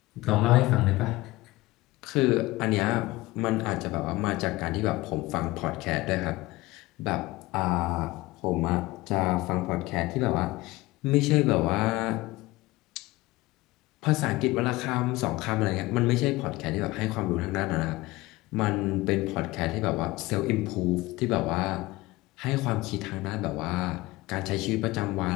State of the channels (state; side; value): quieter; right; 19.9 dB